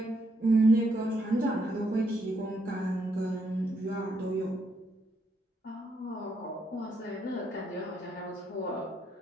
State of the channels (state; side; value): normal; both; correlation 0.76